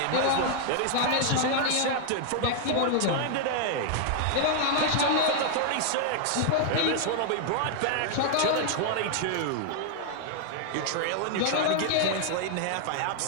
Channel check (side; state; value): both; different; correlation 0.00